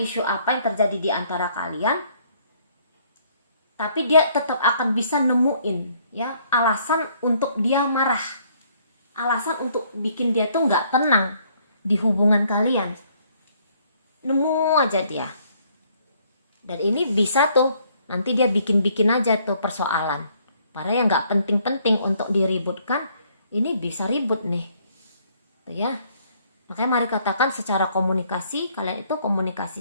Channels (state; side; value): inverted; both; correlation -0.65